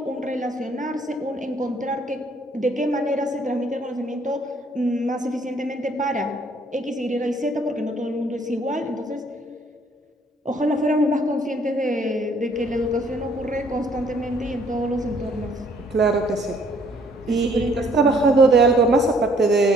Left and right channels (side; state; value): both; normal; correlation 0.63